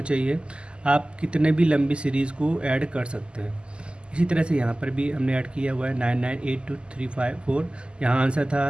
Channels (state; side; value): late; left; 0.050 ms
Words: चाहिए, आप कितने भी लंबी सीरीज़ को ऐड कर सकते हैं। इसी तरह से यहाँ पर भी हमने ऐड किया हुआ है 9982354। यहाँ आंसर